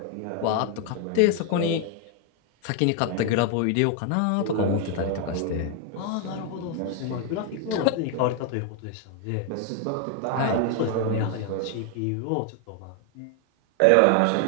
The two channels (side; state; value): both; different; correlation 0.00